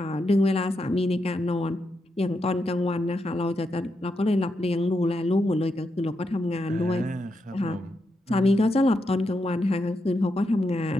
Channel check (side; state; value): both; normal; correlation 0.84